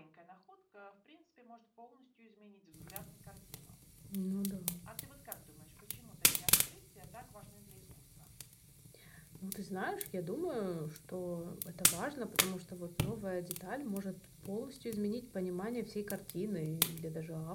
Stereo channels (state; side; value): identical; both; correlation 1.00